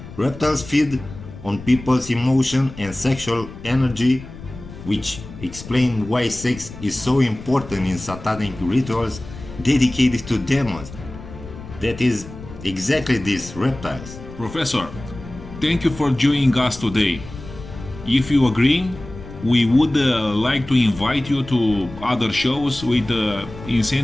Reptiles feed on people's emotion and sexual energy, which explain why sex is so important in satanic rituals dedicated to demons. That is exactly these reptiles. Professor, thank you for joining us today. If you agree, we would like to invite you to other shows with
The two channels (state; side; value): noise; left; rumble, 14 dB below the sound